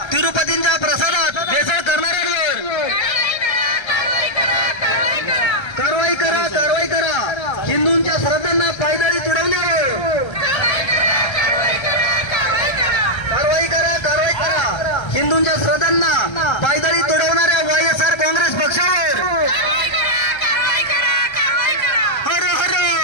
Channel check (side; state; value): right; late; 1.3 ms